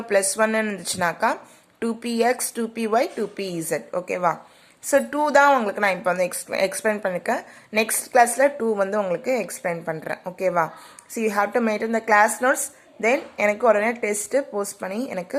+1 இருந்துச்சுனாக்கா 2px 2py 2pz. ஓகேவா? ஸோ 2 தான் உங்களுக்கு நான் இப்போ வந்து எக்ஸ்பிளைன் பண்ணியிருக்கேன். நெக்ஸ்ட் கிளாஸில் 2 வந்து உங்களுக்கு எக்ஸ்பிளைன் பண்ணுறேன். ஓகேவா? So you have to maintain the class notes. Then எனக்கு உடனே டெஸ்ட்டு போஸ்ட் பண்ணி எனக்கு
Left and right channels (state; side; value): identical; both; correlation 1.00